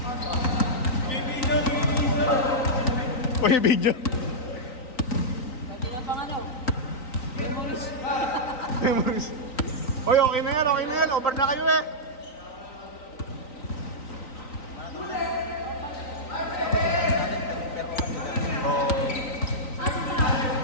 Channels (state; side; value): late; right; 3.9 ms